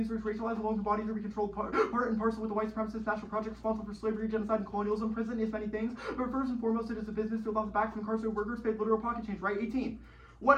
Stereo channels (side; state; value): both; identical; correlation 1.00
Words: to racialize along the bodies of every controlled part and parcel with the white supremacist national project responsible for slavery, genocide, and colonialism. Prison is many things, but first and foremost, it is a business built off the backs of incarcerated workers paid literal pocket change. Right? 18. What